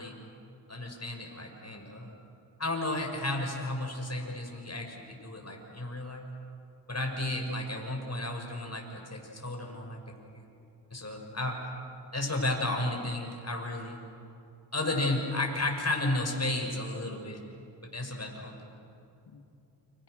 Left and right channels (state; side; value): normal; both; correlation 0.31